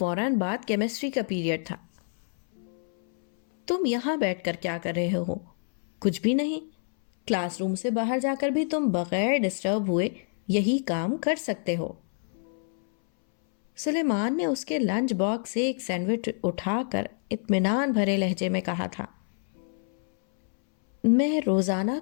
بعد کیمسٹری کا پیریڈ تھا۔ تم یہاں بیٹھ کر کیا کر رہے ہو؟ کچھ بھی نہیں، کلاس روم سے باہر جا کر بھی تم بغیر ڈسٹرب ہوئے یہی کام کر سکتے ہو۔ سلیمان نے اس کے لنچ باکس سے ایک سینڈوچ اٹھا کر اطمینان بھرے لہجے میں کہا تھا۔ میں روزانہ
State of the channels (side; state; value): right; silent; 60 dB below the other